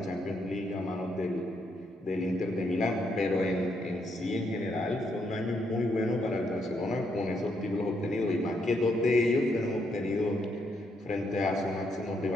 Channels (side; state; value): both; normal; correlation 0.76